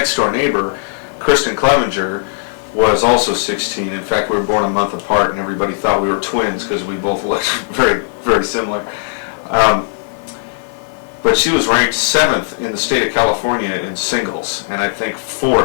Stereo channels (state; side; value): silent; right; digital silence